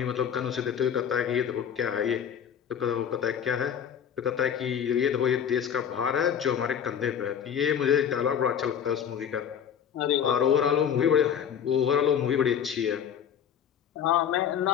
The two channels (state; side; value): quieter; right; 8.5 dB